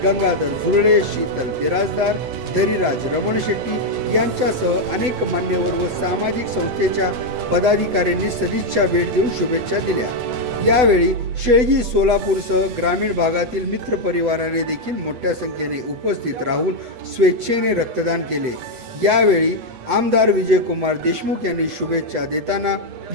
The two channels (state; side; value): late; left; 8.4 ms